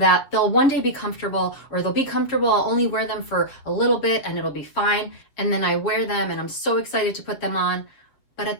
they'll one day be comfortable, or they'll be comfortable, I'll only wear them for a little bit and it'll be fine, and then I wear them and I'm so excited to put them on, but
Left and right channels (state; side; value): late; right; 7.5 ms